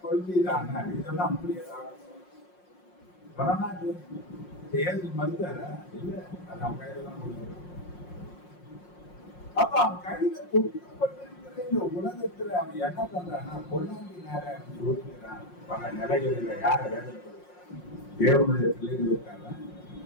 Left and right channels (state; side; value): late; right; 5.6 ms